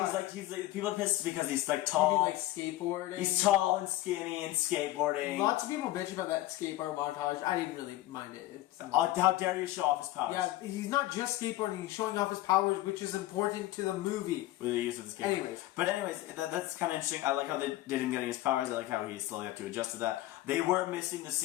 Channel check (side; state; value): right; quieter; 16.1 dB